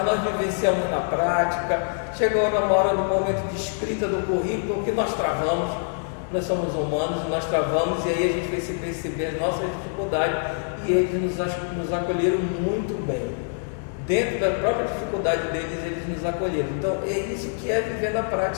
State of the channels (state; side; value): silent; right; 62 dB below the other